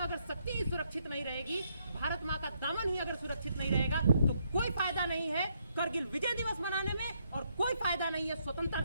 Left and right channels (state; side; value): inverted; both; correlation -0.74